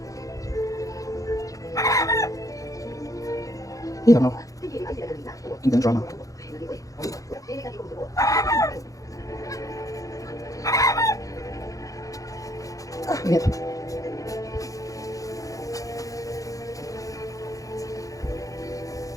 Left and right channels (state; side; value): late; right; 0.16 ms